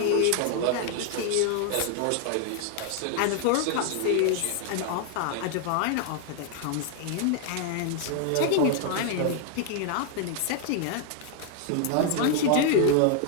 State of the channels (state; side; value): different; both; correlation 0.00